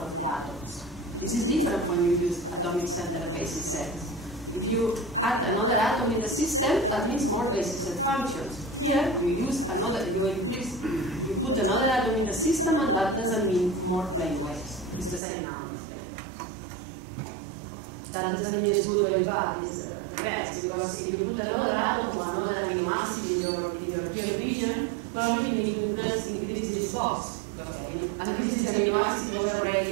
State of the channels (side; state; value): left; drops out; at 15.2 s